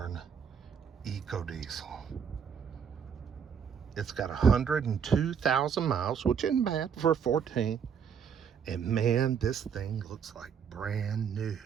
EcoDiesel. It's got 102,000 miles, which isn't bad for a 14. And man, this thing looks like brand new.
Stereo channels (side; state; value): left; quieter; 7.2 dB